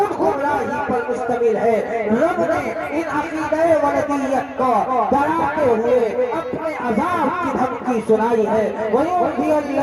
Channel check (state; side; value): identical; both; correlation 1.00